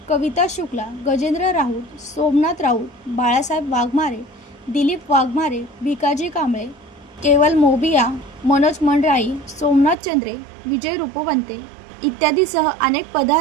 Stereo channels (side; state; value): left; drops out; at 10.0 s